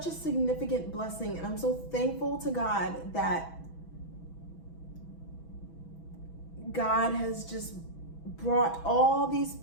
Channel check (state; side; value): late; right; 6.1 ms